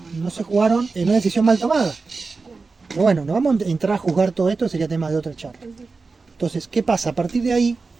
no se jugaron en una decisión mal tomada. Pero bueno, no vamos a entrar a juzgar todo esto, sería tema de otra charla. Entonces, ¿qué pasa? A partir de ahí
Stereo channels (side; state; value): left; quieter; 4.2 dB